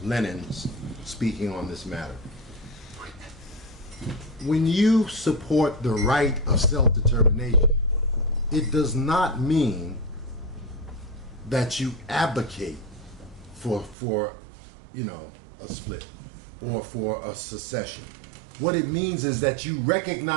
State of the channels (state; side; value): drops out; left; at 14.0 s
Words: Lenin speaking on this matter. When you support the right of self-determination, it does not mean that you advocate for a split or for a secession. What it means is that you